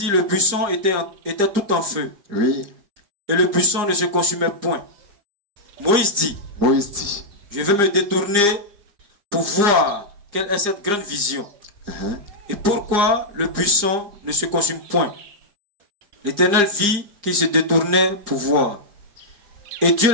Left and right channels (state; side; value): late; left; 4.9 ms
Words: le buisson était tout en feu, oui. et le buisson ne se consumait point. Moïse dit, Moïse dit, je vais me détourner pour voir quelle est cette grande vision, et pourquoi le buisson ne se consume point. L'Éternel vit qu'il se détournait pour voir, et Dieu